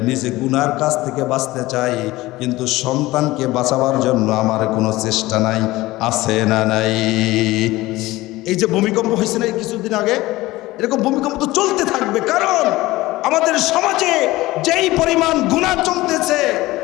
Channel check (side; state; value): right; quieter; 18.7 dB